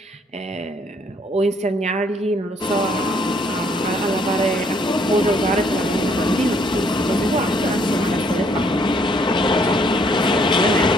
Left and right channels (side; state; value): both; normal; correlation 0.66